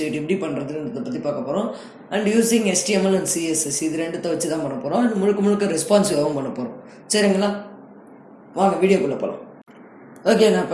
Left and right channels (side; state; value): both; identical; correlation 1.00